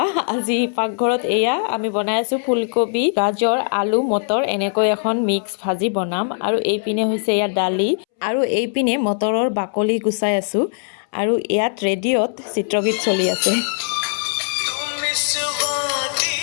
আজি পাকঘৰত এয়া আমি বনাই আছোঁ ফুলকবি গাজৰ আলু মটৰ এনেকৈ এখন মিক্স ভাজি বনাম আৰু এইপিনে হৈছে ইয়াত দালি আৰু এইপিনে মটৰৰ বাকলি গুচাই আছোঁ আৰু ইয়াত ৰেডিঅ'ত চিত্ৰগীত চলি আছে।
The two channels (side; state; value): right; silent; 65 dB below the other